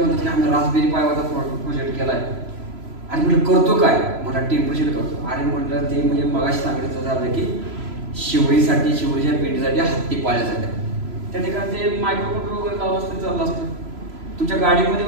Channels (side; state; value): left; late; 3.0 ms